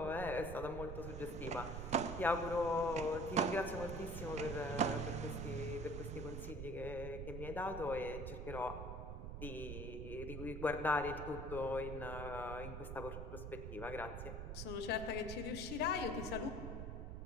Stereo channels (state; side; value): noise; right; rumble, 6 dB below the sound